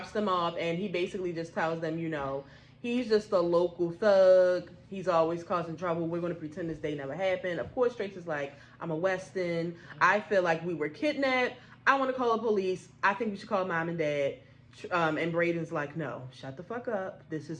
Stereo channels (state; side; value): identical; both; correlation 1.00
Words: them off, and he basically just tells them, you know, he's just a local thug. He's always causing trouble. We're going to pretend this day never happened. Of course, Trace is like, I'm a Weston. I feel like we were kidnapped. I want to call the police. I think we should call mom and dad. And Braden's like, no, shut the fuck up. This